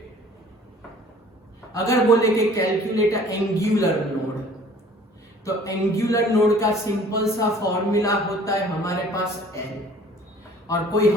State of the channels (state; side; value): normal; both; correlation 0.51